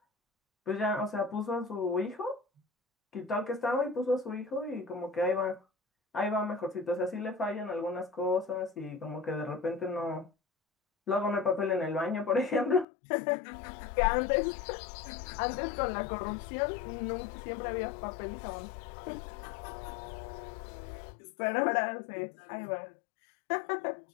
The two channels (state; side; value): drops out; right; at 12.9 s